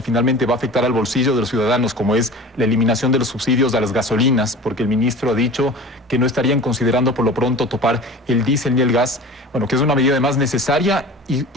finalmente va a afectar al bolsillo de los ciudadanos, como es la eliminación de los subsidios a las gasolinas, porque el ministro ha dicho que no estarían considerando por lo pronto topar el diésel ni el gas, bueno, que es una medida además necesaria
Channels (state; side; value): normal; both; correlation 0.38